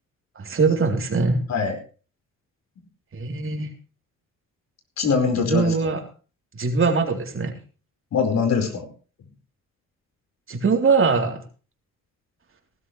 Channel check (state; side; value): normal; both; correlation 0.20